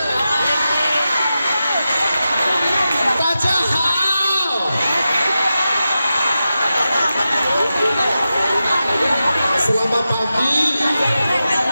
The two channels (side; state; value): both; inverted; correlation -0.91